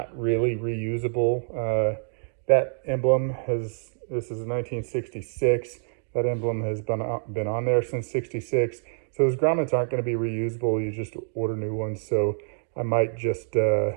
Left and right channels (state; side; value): silent; left; digital silence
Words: really reusable. That emblem this is 1966. That emblem has been on there since 66. So those grommets aren't going to be reusable. You just order new ones. So I might just